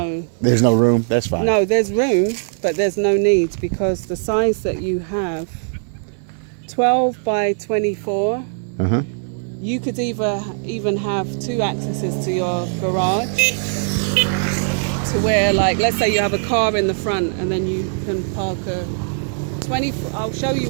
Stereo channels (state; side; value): silent; left; 66 dB below the other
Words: no room. That's fine. No, there's room, but there's no need because the size that you have, 12 by 24, you could even have 2 accesses to your garage, to where, like, let's say you have a car in the front and then you can park a 20. I'll show you